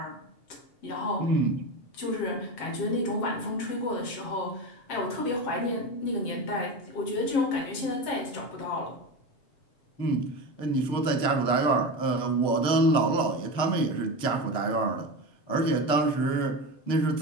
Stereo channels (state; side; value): late; right; 7.5 ms